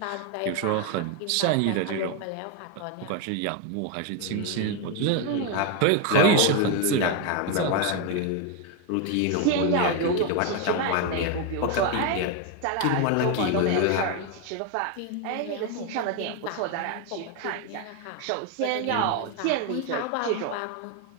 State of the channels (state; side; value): different; both; correlation 0.02